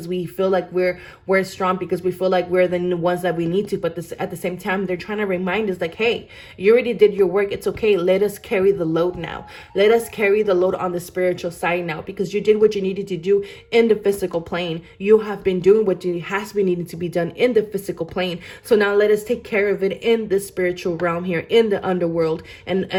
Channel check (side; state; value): both; identical; correlation 1.00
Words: we feel like we're strong, because we feel like we're the ones that we need to. But at the same time, they're trying to remind us like, hey, you already did your work. It's okay. Let us carry the load now. Let us carry the load on the spiritual side now, because you did what you needed to do in the physical plane. You have been doing what has been needing to be done in the physical plane. So now let us take care of it in the spiritual realm here, in the underworld,